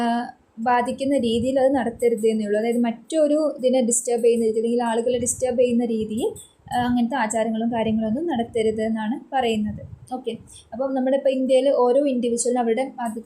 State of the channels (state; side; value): identical; both; correlation 1.00